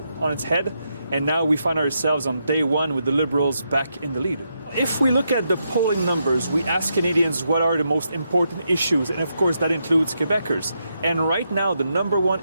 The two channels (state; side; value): inverted; both; correlation -0.82